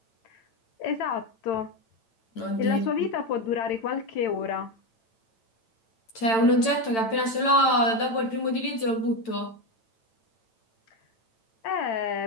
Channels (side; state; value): right; late; 8.9 ms